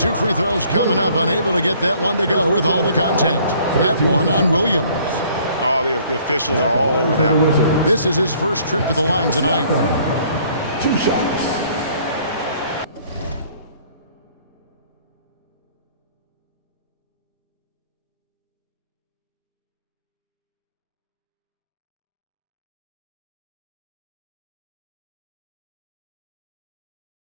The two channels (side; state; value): both; inverted; correlation -0.59